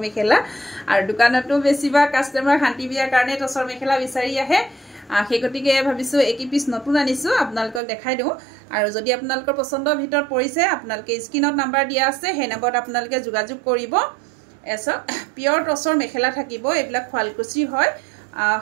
মেখেলা আৰু দোকানতো বেছিবা কাস্টমাৰ শান্তি বিয়াৰ কাৰণে টছৰ মেখেলা বিচাৰি আহে সেই গতিকে ভাবিছো একি পিস নতুন আনিছো আপোনালোকক দেখাই দিও আৰু যদি আপোনালোকৰ পছন্দৰ ভিতৰত পৰিছে আপোনালোকে স্ক্ৰিনত নাম্বাৰ দিয়া আছে সেই নম্বৰত আপোনালোকে যোগাযোগ কৰিব এছ পিয়ৰ টছৰ মেখেলা থাকিব এইবিলাক ফালকুচি হয়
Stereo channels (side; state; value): left; drops out; at 7.8 s